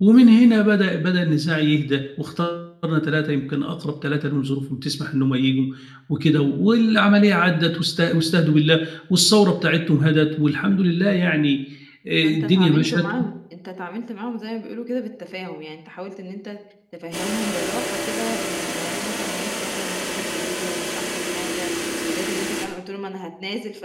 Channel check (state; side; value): identical; both; correlation 1.00